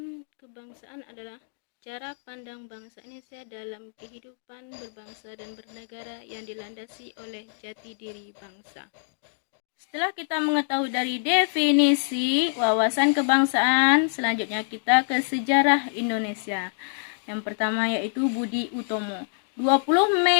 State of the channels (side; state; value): right; silent; digital silence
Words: kebangsaan adalah cara pandang bangsa Indonesia dalam kehidupan berbangsa dan bernegara yang dilandasi oleh jati diri bangsa. Setelah kita mengetahui dari definisi wawasan kebangsaan, selanjutnya kita ke sejarah Indonesia. Yang pertama yaitu Budi Utomo. 20